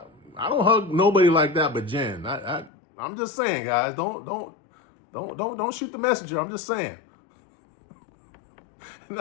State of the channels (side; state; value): right; drops out; at 2.7 s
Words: nobody like that but Jen. I'm just saying, guys, don't shoot the messenger. I'm just saying. And